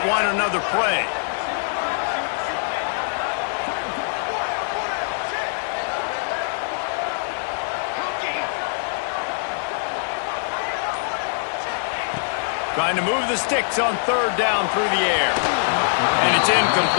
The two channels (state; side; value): silent; right; digital silence